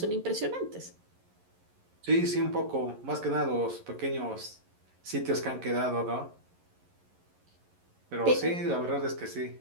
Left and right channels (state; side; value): late; left; 11 ms